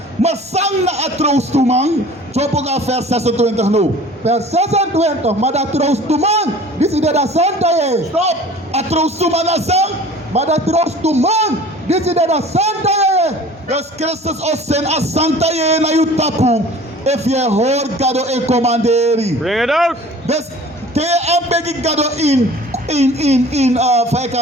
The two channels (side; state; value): both; normal; correlation 0.45